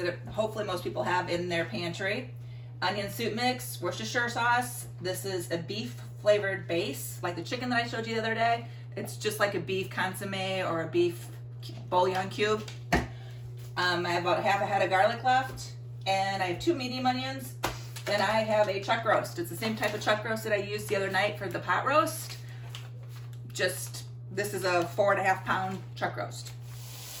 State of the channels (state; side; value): identical; both; correlation 1.00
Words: hopefully most people have in their pantry. Onion soup mix, Worcestershire sauce. This is a beef flavored base, like the chicken that I showed you the other day. It's just like a beef consomme or a beef bouillon cube. I have about half a head of garlic left, and I have 2 medium onions. Then I have a chuck roast. It's the same type of chuck roast that I used the other night for the pot roast. Just, this is a 4.5 pound chuck roast.